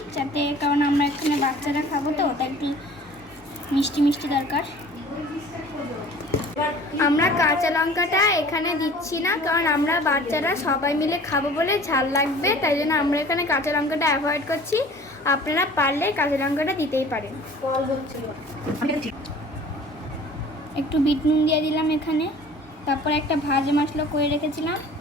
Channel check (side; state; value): both; normal; correlation 0.47